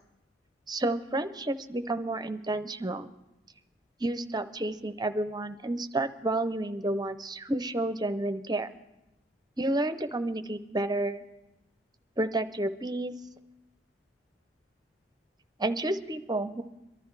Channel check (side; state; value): both; normal; correlation 0.63